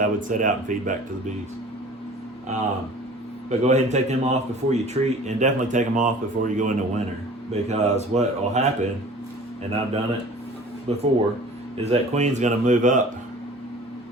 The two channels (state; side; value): normal; both; correlation 0.46